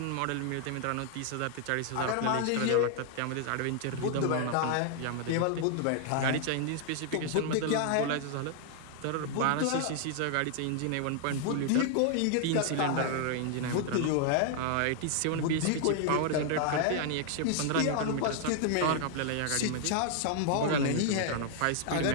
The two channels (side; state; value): both; different; correlation 0.00